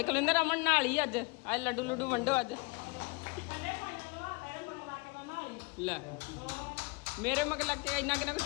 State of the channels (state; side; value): quieter; right; 26.2 dB